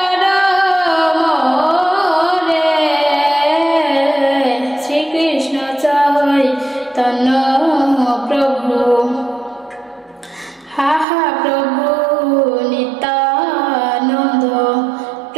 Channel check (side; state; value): left; drops out; at 11.1 s